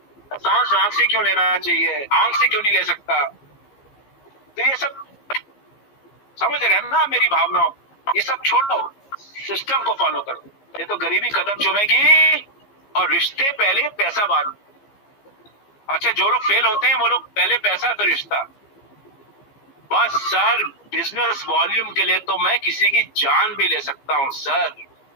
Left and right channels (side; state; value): right; late; 15 ms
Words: सांस नाक से क्यों लेना चाहिए, आंख से क्यों नहीं ले सकता? तो ये सब समझ रहे हैं ना मेरी भावनाओं? ये सब छोड़ो, सिस्टम को फॉलो करो। ये तो गरीबी कदम चूमेगी और रिश्ते पहले पैसा बाद में। अच्छा, जो लोग फेल होते हैं वो लोग पहले पैसा फिर रिश्ता। बस सर, बिजनेस वॉल्यूम के लिए तो मैं किसी की जान भी ले सकता हूं सर।